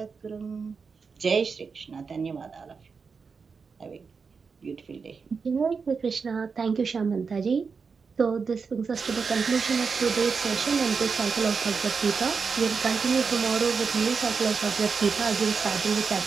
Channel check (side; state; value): left; quieter; 5.3 dB